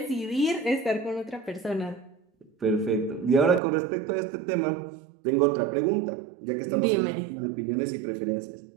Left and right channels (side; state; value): left; drops out; at 3.6 s